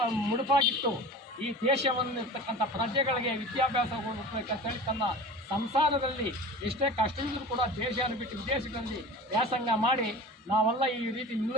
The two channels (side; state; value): both; normal; correlation 0.37